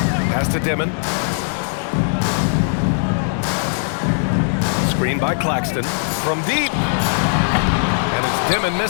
Pass to Dimon. Screen by Claxton from deep. And it's Dimon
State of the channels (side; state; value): right; silent; digital silence